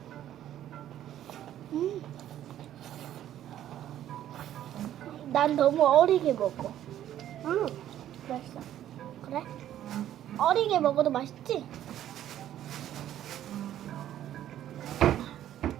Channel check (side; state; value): left; quieter; 11.8 dB